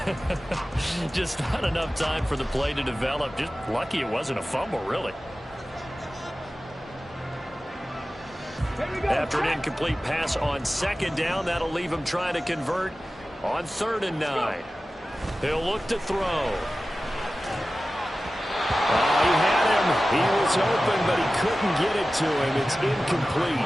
Just not enough time for the play to develop. Just lucky it wasn't a fumble, really. After an incomplete pass on second down, that'll leave him trying to convert on 3rd and 9. He'll look to throw. He had him. He was open, but he couldn't get it to him. It's incomplete.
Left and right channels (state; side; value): normal; both; correlation 0.95